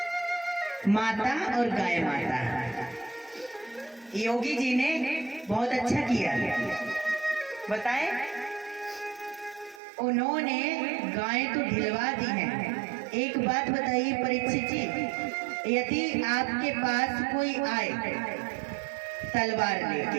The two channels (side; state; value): left; drops out; at 9.8 s